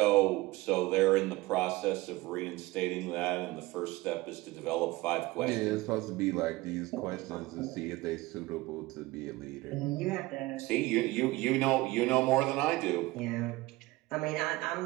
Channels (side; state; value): left; quieter; 20.3 dB